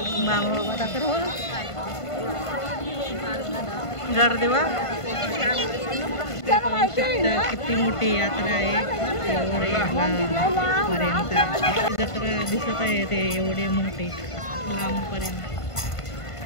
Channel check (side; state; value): right; late; 1.5 ms